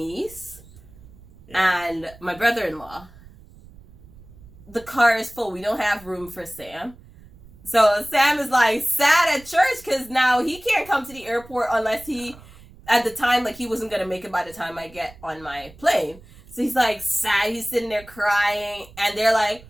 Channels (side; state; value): right; noise; rumble, 22 dB below the sound